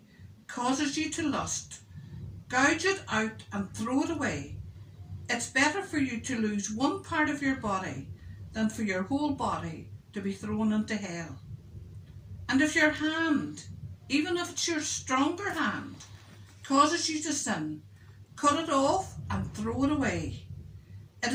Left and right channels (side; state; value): both; identical; correlation 1.00